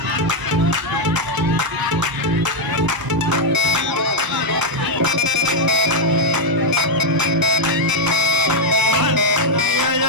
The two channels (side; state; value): left; late; 1.0 ms